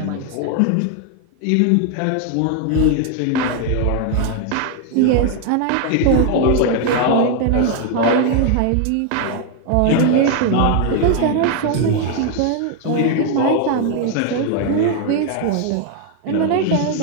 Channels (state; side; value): different; both; correlation 0.00